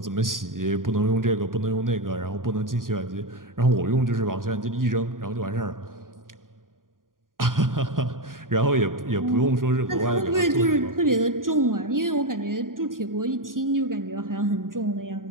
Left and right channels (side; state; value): left; late; 0.90 ms